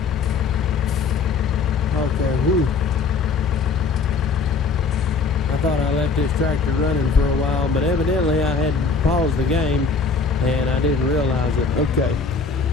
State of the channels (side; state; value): right; quieter; 4.7 dB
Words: Okay, whew. I thought I left this tractor running for a while, but evidently I had paused the game and I didn't realize it. Okay.